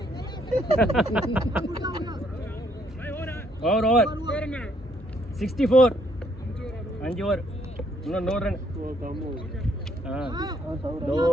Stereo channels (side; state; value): both; normal; correlation 0.69